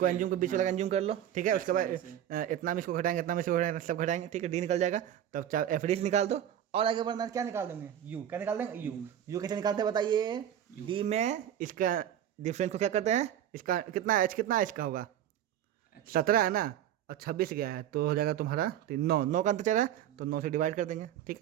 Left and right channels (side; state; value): left; quieter; 10.8 dB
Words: एंज्यूम के बीच वाला एंज्यूम कर लो। ठीक है, उसके बाद इतना में इसको घटाएंगे, इतना में इसको घटाएंगे, सब घटाएंगे। ठीक है, डी निकल जाएगा, तब चाहे एफ डी निकाल दो, और आगे बढ़ना क्या निकाल देंगे, यू, क्या निकाल देंगे यू कैसे निकालते हैं बताइए, डी में इसका डिफरेंस को क्या करते हैं, इसका कितना एच कितना इसका होगा 17 है ना, और 26 गया है, तो हो जाएगा तुम्हारा 9 का अंतर चल रहा है, तो 9 से डिवाइड कर देंगे। ठीक